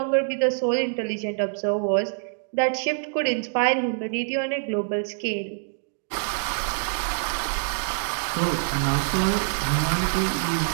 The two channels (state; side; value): silent; left; digital silence